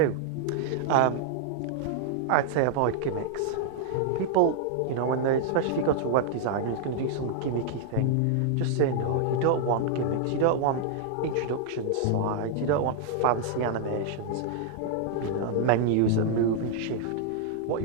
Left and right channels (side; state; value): both; different; correlation -0.01